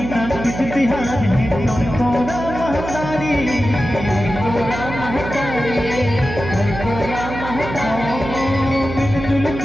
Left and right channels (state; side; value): noise; right; hum, 8 dB below the sound